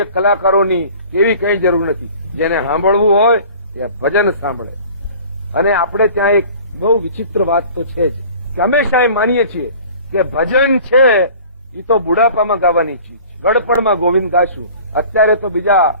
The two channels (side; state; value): both; inverted; correlation -0.45